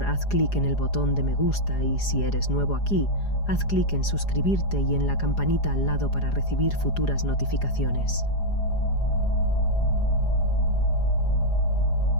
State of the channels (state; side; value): late; right; 4.9 ms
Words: haz clic en el botón de me gusta y si eres nuevo aquí, haz clic en suscribirte y en la campanita al lado para recibir futuras notificaciones.